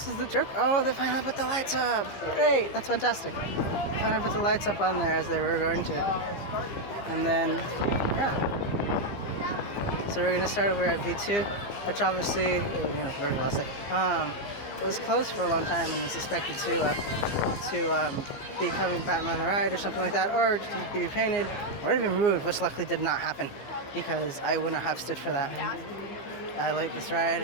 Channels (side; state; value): right; late; 15 ms